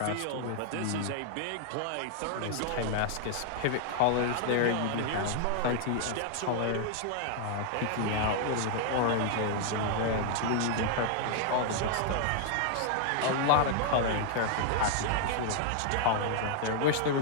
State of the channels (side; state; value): both; different; correlation 0.00